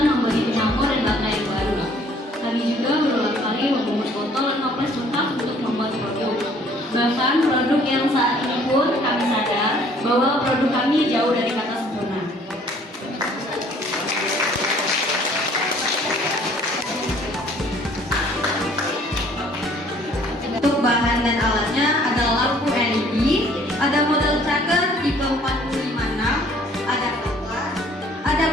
membeli penyampur dan baterai yang baru. Kami juga berulang kali membuat botol dan toples bekas untuk membuat produk. Bahkan produk yang saat ini pun kami sadar bahwa produk kami jauh dari kata sempurna. Untuk bahan dan alatnya ada lampu LED, ada model tracker tipe 456, ada kompas, ada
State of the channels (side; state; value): both; normal; correlation 0.58